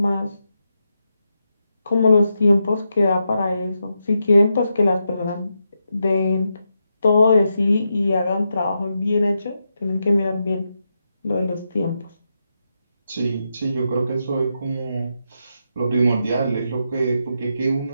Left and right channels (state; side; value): inverted; both; correlation -0.85